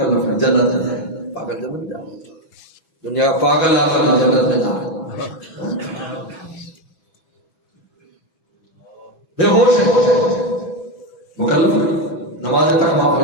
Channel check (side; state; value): right; late; 6.1 ms